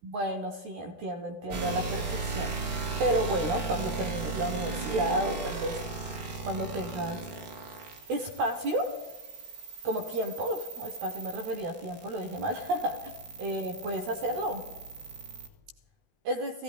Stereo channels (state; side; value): late; left; 14 ms